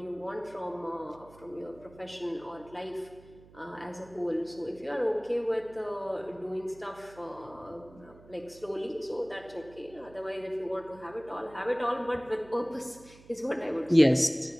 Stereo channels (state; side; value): noise; right; hum, 22 dB below the sound